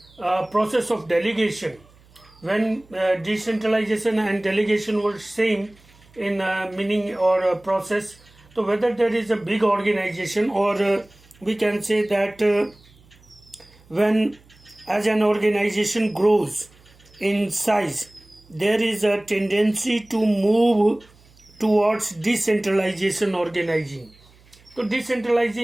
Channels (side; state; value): right; noise; hum, 28 dB below the sound